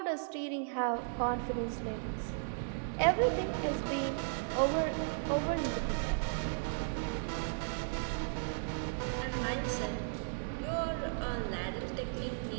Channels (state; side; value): silent; left; digital silence